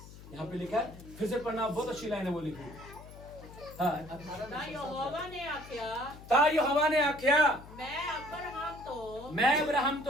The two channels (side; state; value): left; noise; hum, 17 dB below the sound